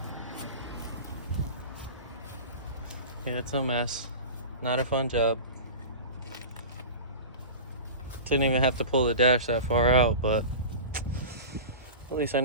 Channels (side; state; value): both; inverted; correlation -0.32